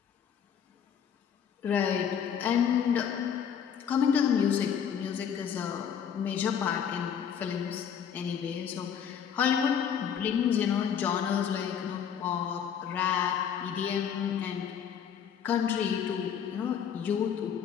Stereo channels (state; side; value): quieter; right; 8.1 dB